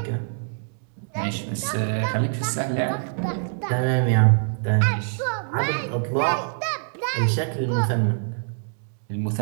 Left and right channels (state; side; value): silent; left; digital silence